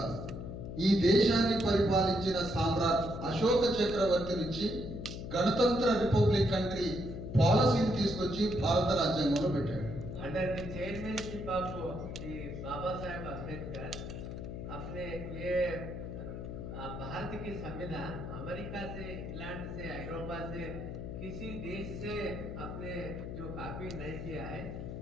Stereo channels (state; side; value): noise; left; hum, 7 dB below the sound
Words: ఈ దేశాన్ని పరిపాలించిన సామ్రాట్ అశోక చక్రవర్తి నుంచి గణతంత్ర రిపబ్లిక్ కంట్రీ పాలసీని తీసుకొచ్చి భారత రాజ్యాంగంలో పెట్టాడు. Under the చైర్మनशिप of the Baba Saheb Ambedkar अपने ये भारत की संविधान अमेरिका से, इंग्लैंड से, यूरोपा से किसी देश से अपने जो कॉपी नहीं किया है,